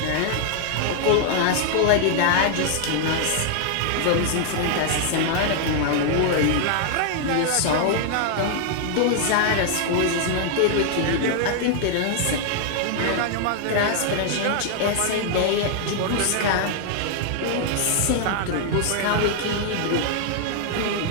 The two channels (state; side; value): different; both; correlation 0.00